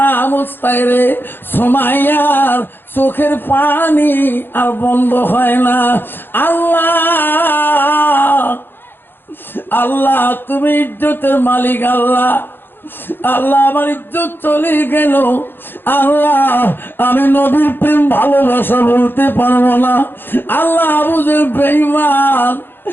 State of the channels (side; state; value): right; late; 0.10 ms